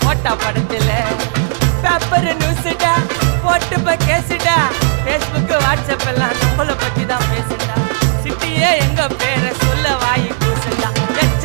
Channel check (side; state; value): left; silent; digital silence